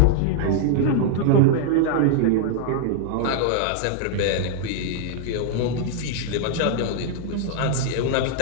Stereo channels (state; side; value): different; both; correlation -0.01